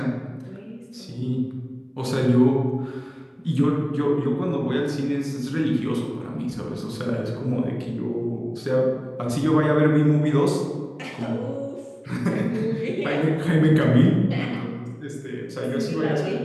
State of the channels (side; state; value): both; identical; correlation 1.00